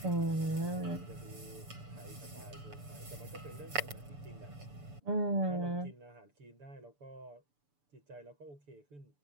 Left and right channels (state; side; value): late; left; 6.9 ms